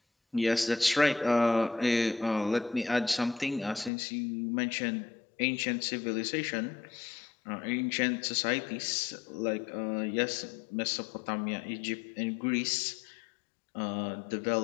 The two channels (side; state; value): right; drops out; at 3.9 s